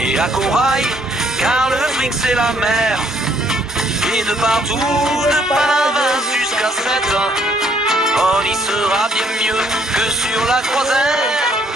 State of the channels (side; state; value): both; normal; correlation 0.67